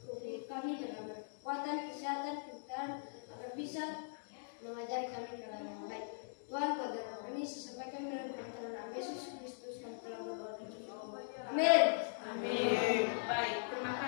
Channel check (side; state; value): right; silent; digital silence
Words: kami dalam kekuatan, kesehatan, kepintaran, agar bisa mengajari kami ke dalam yang baik. Tuhan, pada kami sesampaikan dengan pertolongan Yesus Kristus kami telah berdoa. Amin. Amin. Baik, terima